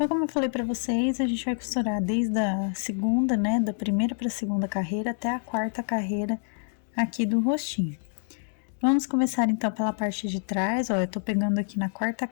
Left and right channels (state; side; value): silent; right; 60 dB below the other